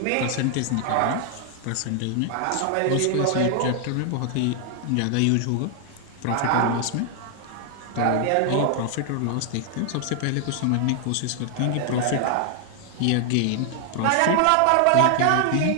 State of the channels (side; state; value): both; different; correlation 0.00